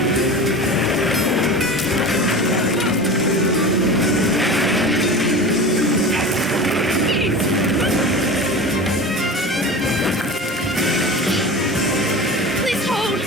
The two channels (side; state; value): both; normal; correlation 0.33